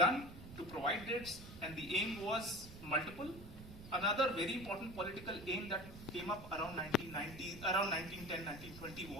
to provide dates, and the aim was multiple. Another very important political aim that came up around 1910, 1920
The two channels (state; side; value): noise; right; rumble, 14 dB below the sound